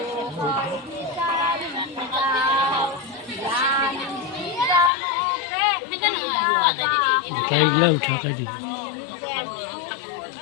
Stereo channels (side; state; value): right; drops out; at 4.9 s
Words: कैगला उठा कर दी